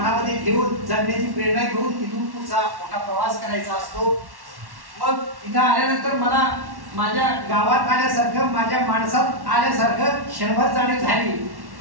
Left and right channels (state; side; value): late; left; 1.1 ms